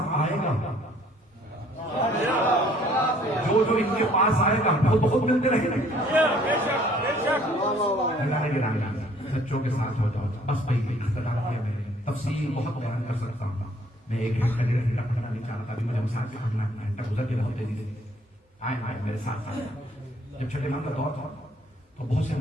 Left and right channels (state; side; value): normal; both; correlation 0.60